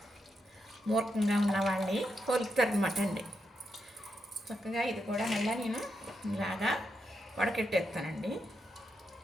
మూర్ఖంగా ఉన్న వాళ్ళని పోలుస్తారు అనమాట అండి. చక్కగా ఇది కూడా మళ్ళీ నేను ఇలాగా వడకెట్టేస్తానండి.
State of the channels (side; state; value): both; normal; correlation 0.84